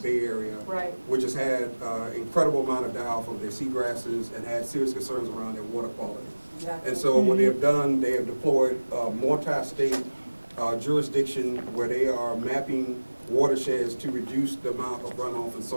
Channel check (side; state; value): both; inverted; correlation -1.00